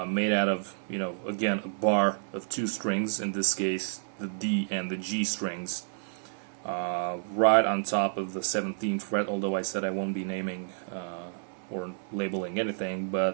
made out of, you know, again, a bar of two strings, in this case the D and the G strings, right on top of the 17th fret, although I said I won't be naming or labeling anything,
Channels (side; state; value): left; silent; 58 dB below the other